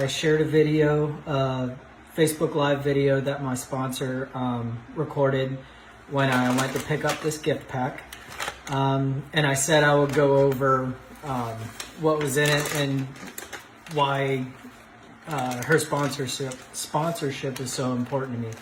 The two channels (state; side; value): identical; both; correlation 1.00